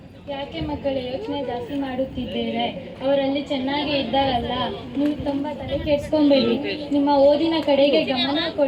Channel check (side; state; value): both; identical; correlation 1.00